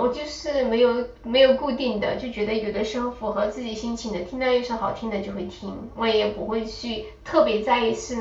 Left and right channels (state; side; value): identical; both; correlation 1.00